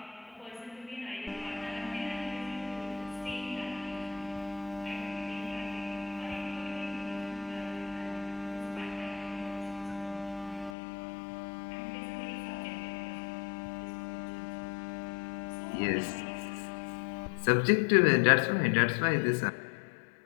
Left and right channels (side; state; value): right; drops out; at 10.7 s